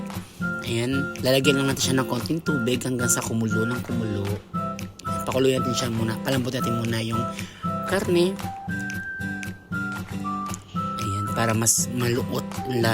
ayan, lalagyan lang natin siya ng konting tubig hanggang sa kumulo ng kumulo. Ayan, pakuluyan natin siya muna, palambutin natin muna yung karne. Para mas maluot ang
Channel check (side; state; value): both; identical; correlation 1.00